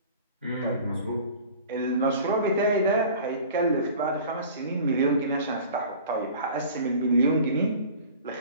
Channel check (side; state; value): both; inverted; correlation -0.43